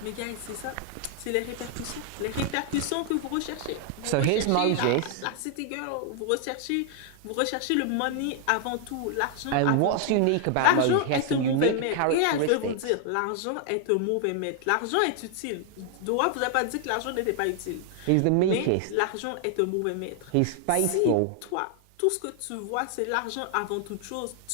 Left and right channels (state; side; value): different; both; correlation 0.00